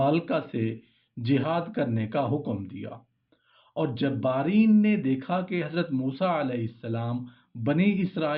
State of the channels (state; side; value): identical; both; correlation 1.00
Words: سے جہاد کرنے کا حکم دیا، اور جبارین نے دیکھا کہ حضرت موسیٰ علیہ السلام بنی